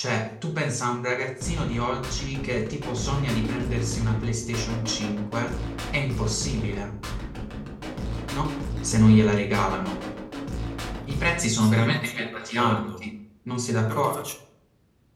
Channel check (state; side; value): identical; both; correlation 1.00